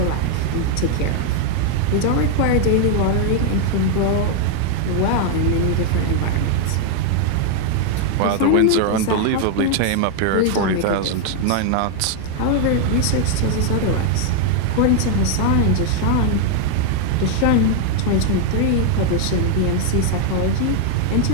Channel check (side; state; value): both; different; correlation 0.00